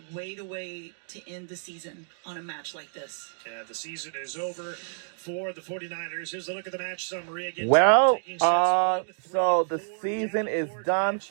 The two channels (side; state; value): left; silent; digital silence